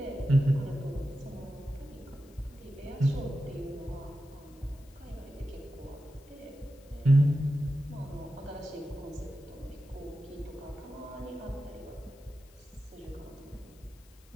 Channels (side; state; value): left; noise; hiss, 27 dB below the sound